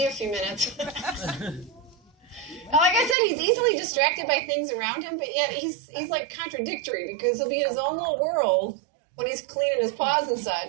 a few minutes. Like I said, he's easily distracted by things around him, but yet he's like contradictory because he'll be in his own little world when he's cleaning his paws and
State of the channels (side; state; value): left; drops out; at 3.2 s